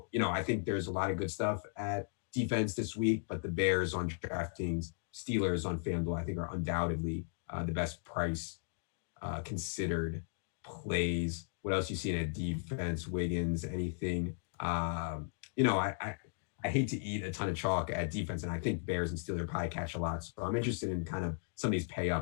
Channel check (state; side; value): silent; right; digital silence